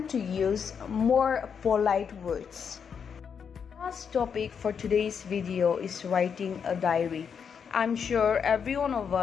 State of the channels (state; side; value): quieter; right; 6.8 dB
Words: to use more polite words. Last topic for today's video is writing a diary. I'm sure every one of